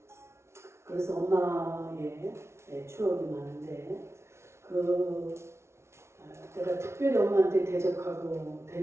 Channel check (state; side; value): late; left; 0.13 ms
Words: 그래서 엄마의 추억이 많은데 내가 특별히 엄마한테 대적하고